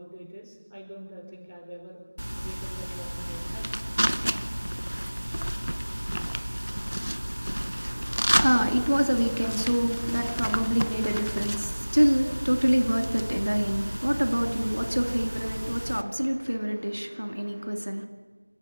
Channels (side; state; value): both; inverted; correlation -1.00